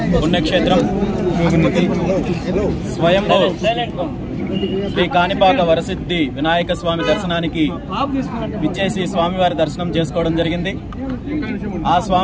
పుణ్యక్షేత్రం స్వయంభూ శ్రీ కాణిపాక వరసిద్ధి వినాయక స్వామి దర్శనానికి విచ్చేసి స్వామివారి దర్శనం చేసుకోవడం జరిగింది. ఆ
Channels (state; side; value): identical; both; correlation 1.00